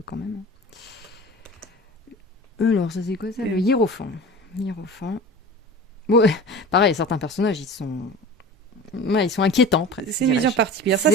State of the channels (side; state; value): both; normal; correlation 0.35